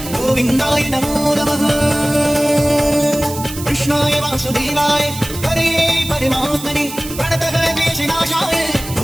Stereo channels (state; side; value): noise; right; hiss, 11 dB below the sound